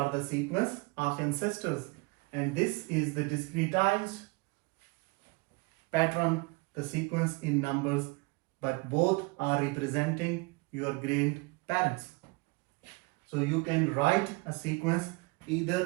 the sequence of ancestors, and this is the discretized pattern, the sequence in numbers, but both are representing your grandparents. So you can write a sequence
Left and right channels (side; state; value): left; quieter; 26.4 dB